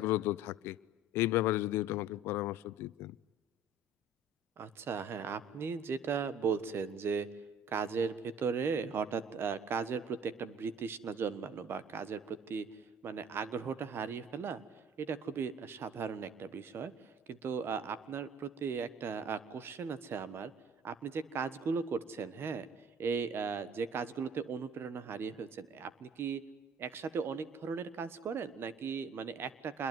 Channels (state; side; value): normal; both; correlation 0.48